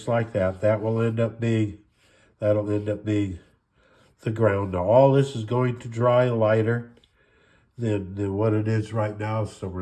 like that. That'll end up being the ground. Now all this is going to dry lighter than what it is right now, so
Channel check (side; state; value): both; identical; correlation 1.00